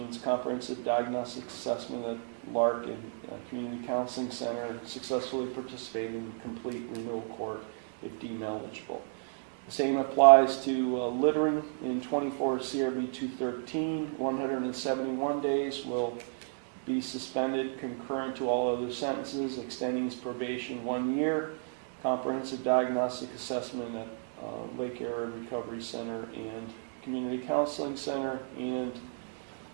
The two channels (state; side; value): silent; left; digital silence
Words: comprehensive diagnostic assessment at Lark and Community Counseling Center, successfully participate in complete renewal court if deemed eligible. Same applies to littering in 24 CRB 213. 171 days will be suspended concurrent to all other sentences, extending his probation 1 year. Comprehensive diagnostic assessment at Lake Area Recovery Center and Community Counseling Center, and